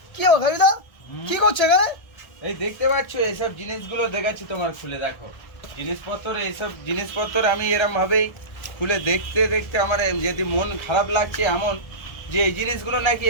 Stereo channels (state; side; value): late; right; 1.3 ms